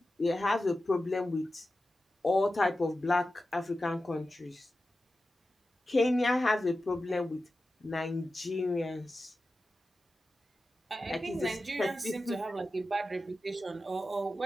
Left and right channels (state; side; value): normal; both; correlation 0.93